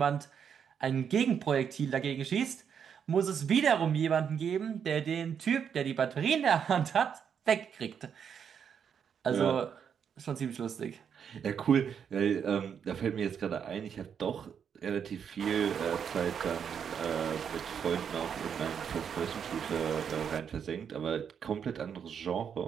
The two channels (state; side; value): quieter; left; 7.6 dB